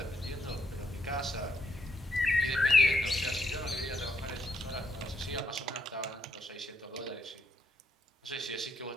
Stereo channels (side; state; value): both; normal; correlation 0.77